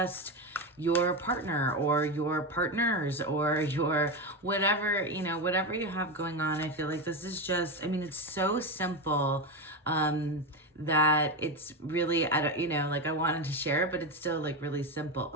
your partner or your partners or your whatever, whatever you have going on. I feel like this is just, it's so simple that it's really, I wanted to share it, but it's still like really simple.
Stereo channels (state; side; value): normal; both; correlation 0.15